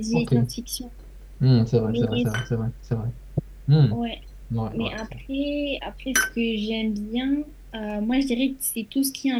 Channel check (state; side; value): identical; both; correlation 1.00